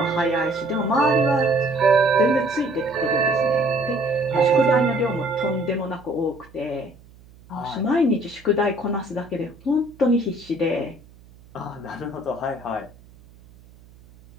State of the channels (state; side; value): noise; right; hum, 25 dB below the sound